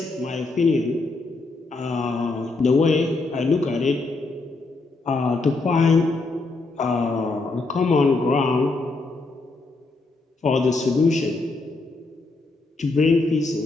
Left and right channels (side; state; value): right; quieter; 3.4 dB